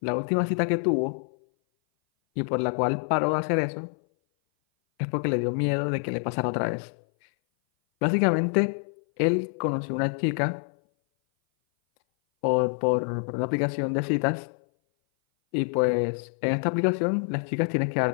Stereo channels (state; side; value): silent; right; 58 dB below the other